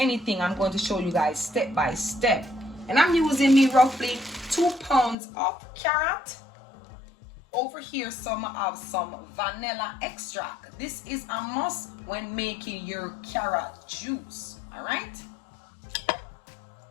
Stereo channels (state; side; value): drops out; right; at 5.2 s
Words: I'm going to show you guys step by step, and I'm using me roughly 2 pounds of carrot. Over here, some have some vanilla extract. This is a must when making your carrot juice. All right.